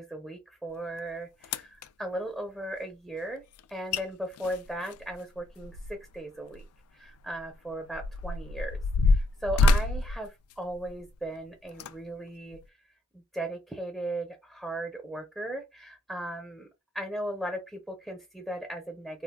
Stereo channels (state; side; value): normal; both; correlation 0.74